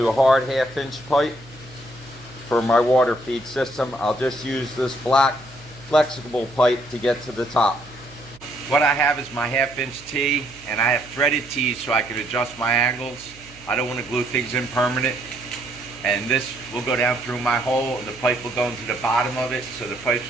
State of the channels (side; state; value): right; noise; hum, 23 dB below the sound